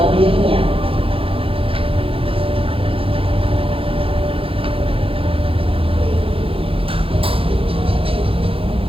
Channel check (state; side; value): late; left; 0.27 ms